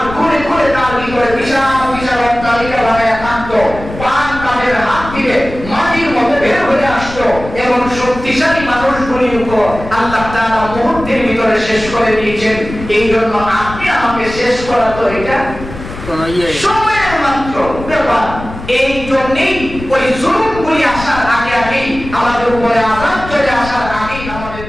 ঘুরে ঘুরে তার ভিতরে বিশাল বিশাল অট্টালিকা বানায় থাকতো, পান তাদের হাত থেকে মাটির মধ্যে বের হয়ে আসতো, এবং শক্তিশালী মানুষগুলির উপর আল্লাহ তাআলা মুহূর্তের ভিতরে শেষ করে দিয়েছেন। এই জন্য আপনি আমাকে শেষ করা তো এটা সময়ের মাত্র ব্যাপার। এই জন্যই ওই জুলুমগুলি আসার আগে আগেই আমাদের উপরে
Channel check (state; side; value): noise; left; rumble, 12 dB below the sound